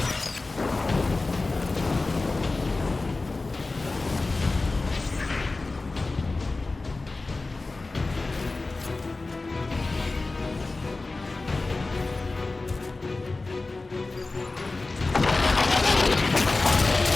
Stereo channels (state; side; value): quieter; right; 3.4 dB